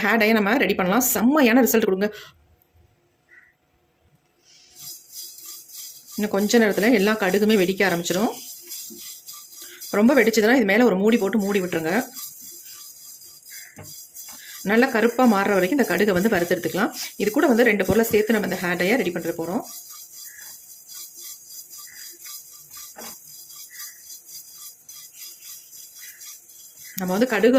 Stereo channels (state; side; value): identical; both; correlation 1.00